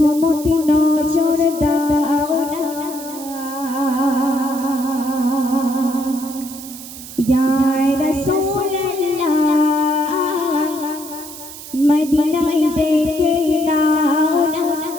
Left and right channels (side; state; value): right; noise; hiss, 13 dB below the sound